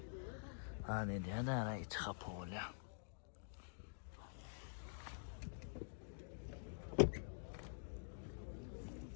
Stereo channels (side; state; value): right; silent; digital silence